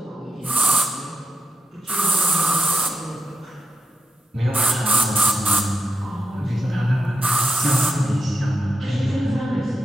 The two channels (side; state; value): both; normal; correlation 0.83